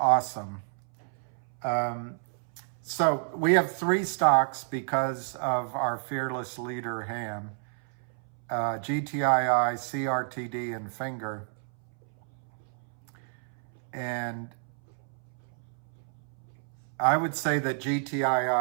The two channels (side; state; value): left; silent; 58 dB below the other